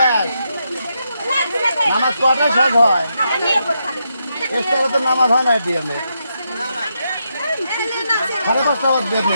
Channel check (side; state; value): both; inverted; correlation -0.82